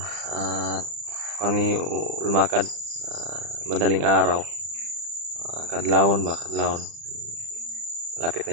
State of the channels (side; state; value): left; late; 35 ms